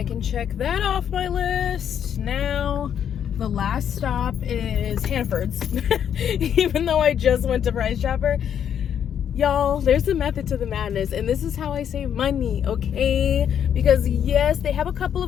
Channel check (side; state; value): right; quieter; 8.9 dB